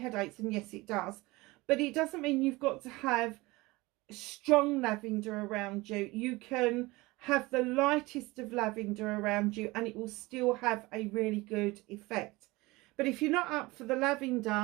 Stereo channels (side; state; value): left; quieter; 21.8 dB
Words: and yes it does, but it doesn't mean you've got to have strong lavender around you. You can have the lightest of lavender around you and it will still have a really good effect. But if you're not up for the